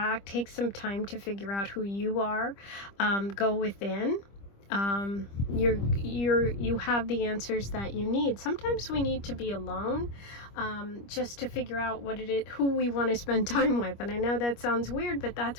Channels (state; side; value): late; right; 25 ms